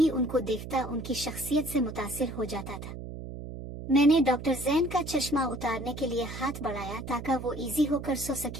उनको देखता उनकी शख्सियत से मुतासिर हो जाता था। मैंने डॉक्टर जैन का चश्मा उतारने के लिए हाथ बढ़ाया ताकि वो इजी होकर सो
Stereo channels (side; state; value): right; noise; hum, 9 dB below the sound